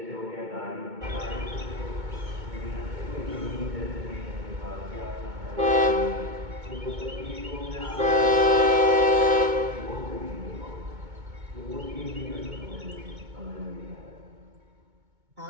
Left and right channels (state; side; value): late; left; 2.2 ms